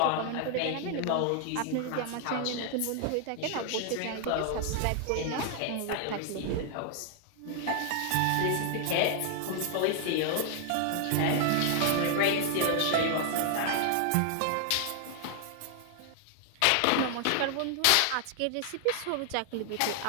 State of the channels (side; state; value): both; different; correlation 0.00